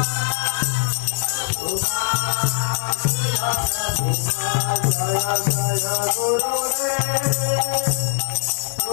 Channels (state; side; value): silent; right; digital silence